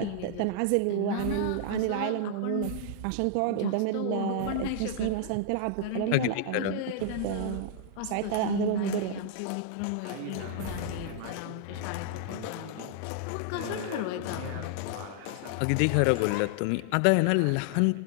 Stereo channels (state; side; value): different; both; correlation -0.01